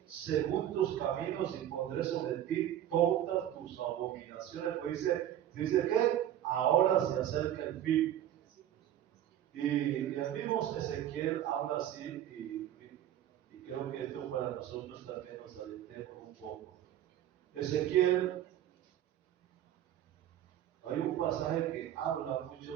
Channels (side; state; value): left; quieter; 11.5 dB